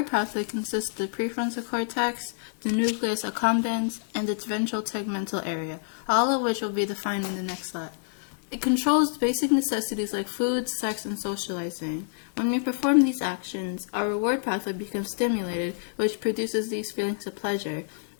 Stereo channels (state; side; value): silent; right; digital silence